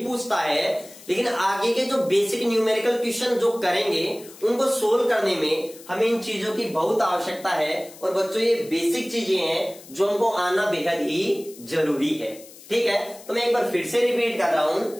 पूछता है, लेकिन आगे के जो बेसिक न्यूमेरिकल क्वेश्चन जो करेंगे उनको सोल्व करने में हमें इन चीजों की बहुत आवश्यकता है। और बच्चों ये बेसिक चीजें हैं जो हमको आना बेहद ही जरूरी है, ठीक है। तो मैं एक बार फिर से रिपीट कर रहा हूं,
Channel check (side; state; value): left; noise; hiss, 20 dB below the sound